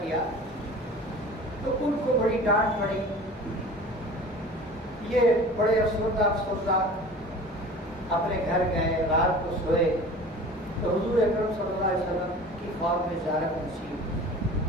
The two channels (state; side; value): normal; both; correlation 0.41